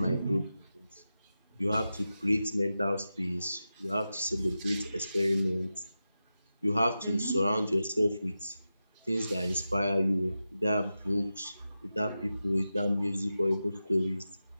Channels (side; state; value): both; inverted; correlation -0.92